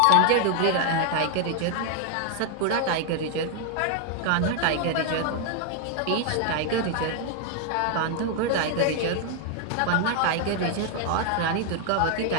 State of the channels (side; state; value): both; different; correlation 0.00